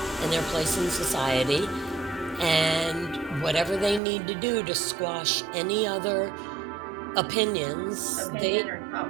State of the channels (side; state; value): left; drops out; at 4.0 s